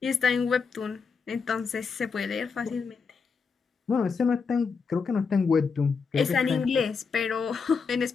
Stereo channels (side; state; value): right; quieter; 5.4 dB